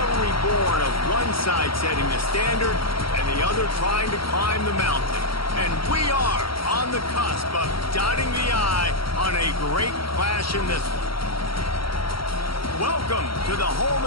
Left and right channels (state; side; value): late; right; 0.74 ms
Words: born of one side setting the standard and the other trying to climb the mountain. And we are on the cusp of dotting the I on a great clash in this one. Welcome to the home